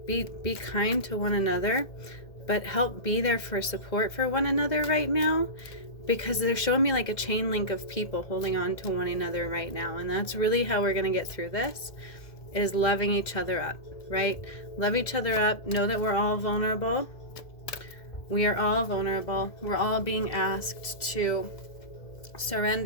be kind to one another, but help be there for support for one another right now. Because they're showing me like a chain link of people holding on to one another right now. And that's really how we're going to get through this, is loving each other up, right? Love each other up. Know that we're all vulnerable. We are all vulnerable. We're all being asked to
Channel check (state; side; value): late; right; 1.7 ms